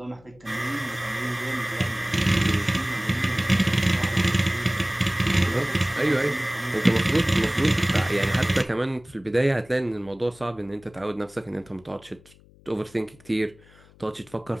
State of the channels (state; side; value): noise; left; hum, 26 dB below the sound